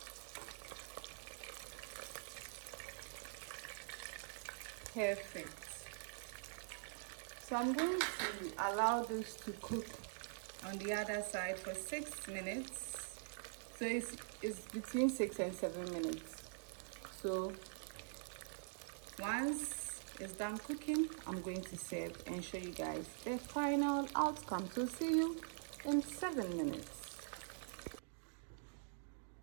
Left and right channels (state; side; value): silent; left; digital silence